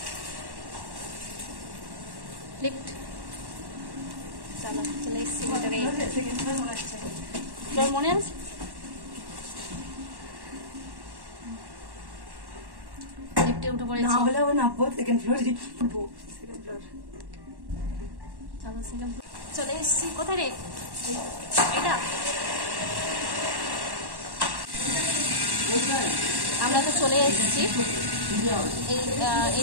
লিফট, চলো চলে এসছি ভিতরে। তোর মনে আছে? লিফটে উঠে পড়েছি। না বলে নামবো সেকেন্ড ফ্লোরে, উঠবো সেকেন্ড ফ্লোর। চলো সেকেন্ড ফ্লোর চলে এসছি। কোথায় রে এটা? আমরা তো চলে এসেছি। এই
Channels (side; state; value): left; late; 1.1 ms